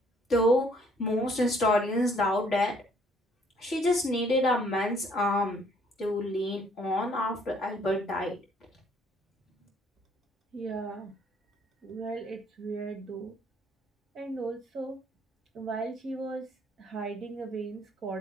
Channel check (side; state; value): both; normal; correlation 0.63